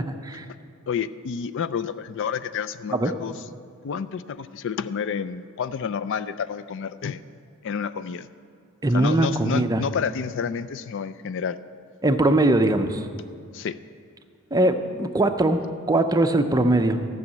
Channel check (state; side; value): normal; both; correlation 0.53